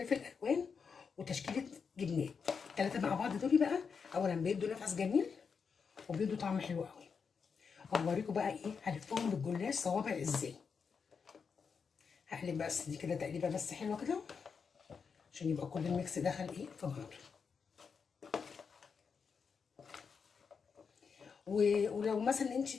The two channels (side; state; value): right; quieter; 5.9 dB